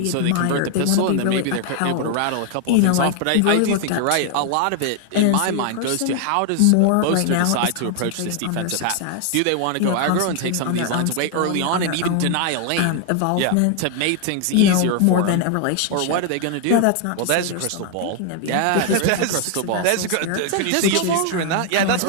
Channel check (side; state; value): both; different; correlation 0.00